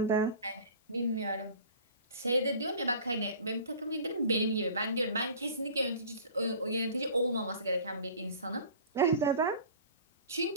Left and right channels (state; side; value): inverted; both; correlation -0.43